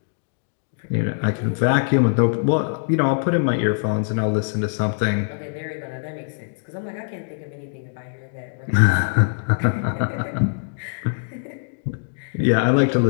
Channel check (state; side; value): silent; right; digital silence